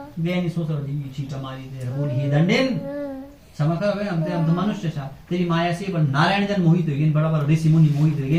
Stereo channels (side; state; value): both; identical; correlation 1.00